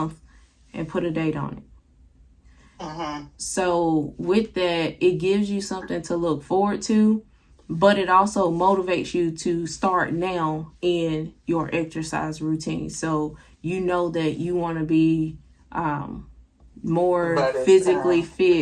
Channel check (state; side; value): identical; both; correlation 1.00